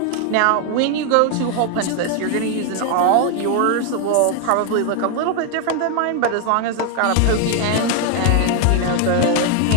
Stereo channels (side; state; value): both; different; correlation 0.01